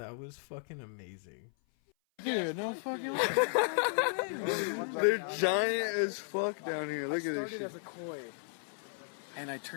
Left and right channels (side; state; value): right; silent; 55 dB below the other